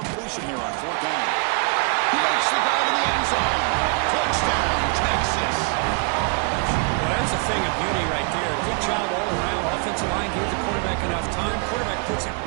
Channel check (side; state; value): left; quieter; 34.5 dB